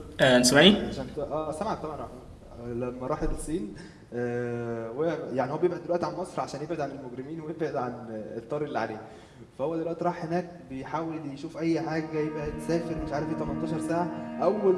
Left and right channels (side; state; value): both; identical; correlation 1.00